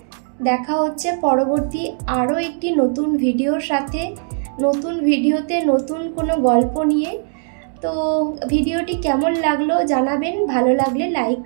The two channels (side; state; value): left; silent; 64 dB below the other